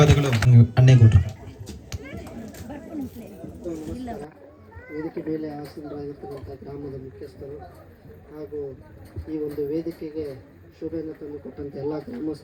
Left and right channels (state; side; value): identical; both; correlation 1.00